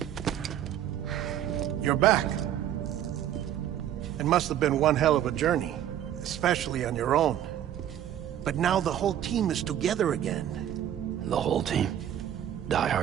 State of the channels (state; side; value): quieter; left; 11.0 dB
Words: You're back. It must have been one hell of a journey, especially on your own. But now the whole team is together again. The whole team? Die